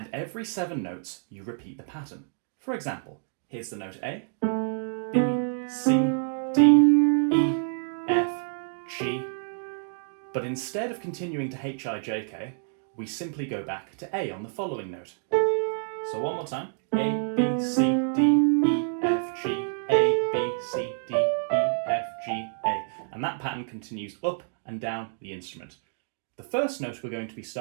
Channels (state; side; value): silent; left; digital silence